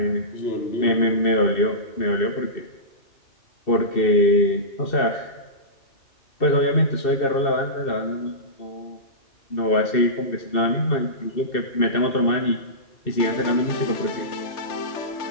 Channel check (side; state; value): right; late; 2.7 ms